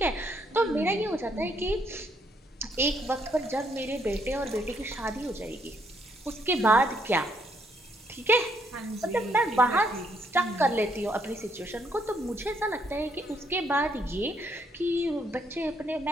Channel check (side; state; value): both; normal; correlation 0.72